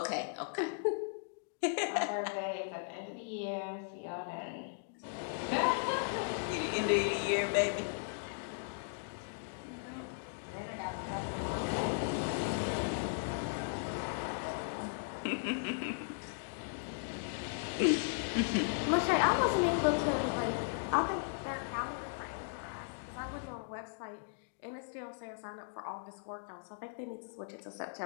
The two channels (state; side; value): silent; right; digital silence